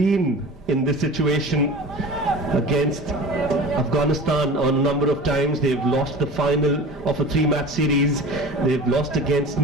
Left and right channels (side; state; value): both; normal; correlation 0.37